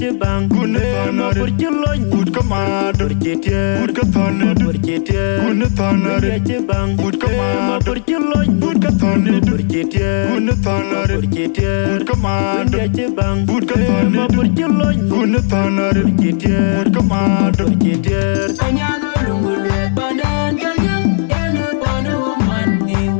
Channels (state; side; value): silent; right; digital silence